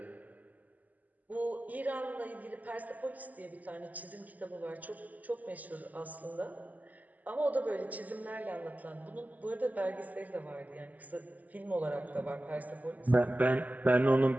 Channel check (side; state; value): left; late; 0.079 ms